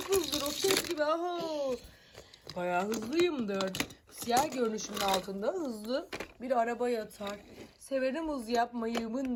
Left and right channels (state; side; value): identical; both; correlation 1.00